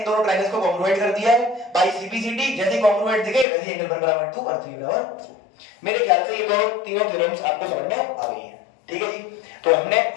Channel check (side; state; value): right; drops out; at 3.5 s